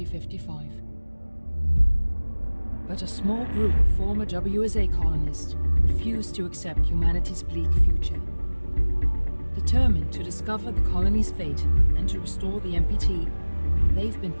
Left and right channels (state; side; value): inverted; both; correlation -1.00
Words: But a small group of former WSA colonists refused to accept humanity's bleak future. Determined to discover the colony's fate and to restore the MPT, they've been